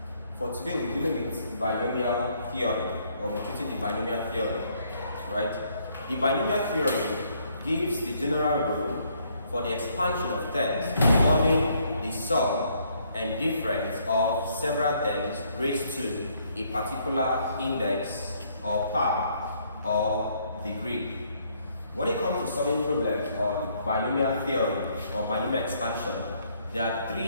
For today we're dealing with binomial theory, or we're treating the binomial theory, right? The binomial theory gives the general rule for the expansion of terms involving the sum and difference of several terms raised to a particular index or power or degree. When it comes to solving problems on binomial theory or binomial expansion, there are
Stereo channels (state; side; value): inverted; both; correlation -0.68